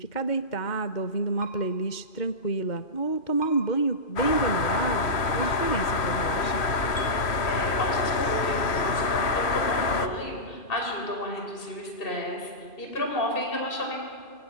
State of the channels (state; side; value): late; right; 2.5 ms